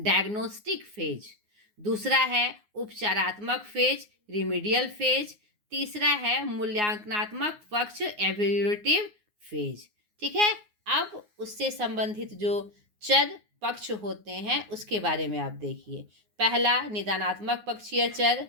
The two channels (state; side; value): late; left; 9.6 ms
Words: फेज। दूसरा है उपचारात्मक फेज, रिमीडियल फेज। तीसरा है मूल्यांकनात्मक पक्ष, एवेल्यूएटिव फेज। ठीक है, अब उससे संबंधित जो चर पक्ष होते हैं उसके बारे में आप देखिए। पहला निदानात्मक पक्षीय चर,